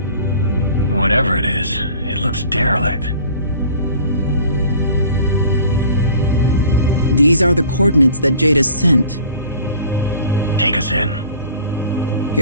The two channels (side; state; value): both; inverted; correlation -0.47